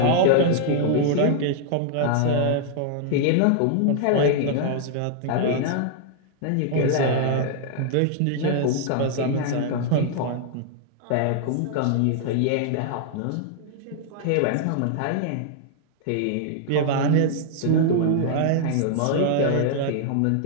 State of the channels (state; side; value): different; both; correlation -0.01